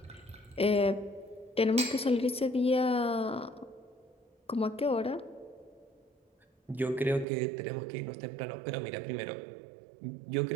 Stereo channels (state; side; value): drops out; left; at 7.2 s